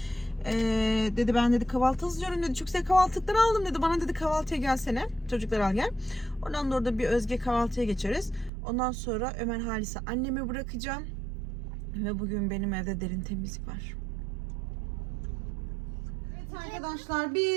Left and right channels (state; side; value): drops out; left; at 8.5 s